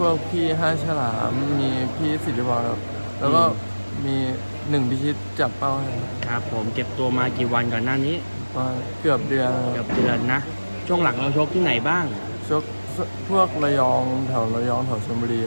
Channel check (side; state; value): both; inverted; correlation -1.00